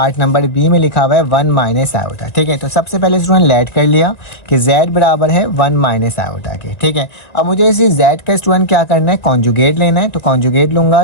नंबर बी में लिखा हुआ है 1 माइनस आयोटा। ठीक है, तो सबसे पहले स्टूडेंट लेट कर लिया कि z बराबर है 1 माइनस आयोटा के। ठीक है, अब मुझे इसी z का स्टूडेंट क्या करना है, कॉन्जुगेट लेना है। तो कॉन्जुगेट लूँगा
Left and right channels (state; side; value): late; right; 2.1 ms